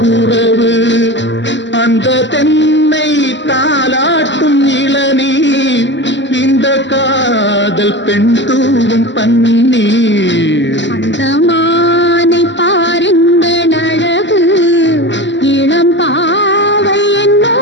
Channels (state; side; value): late; right; 0.53 ms